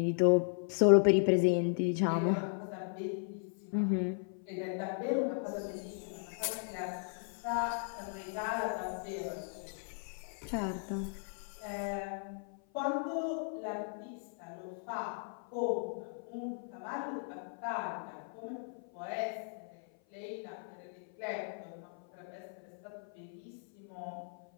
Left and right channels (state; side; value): silent; right; 53 dB below the other